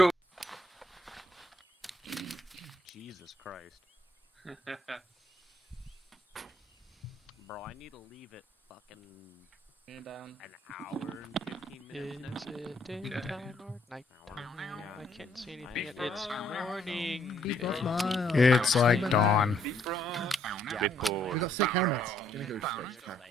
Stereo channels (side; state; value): both; normal; correlation 0.68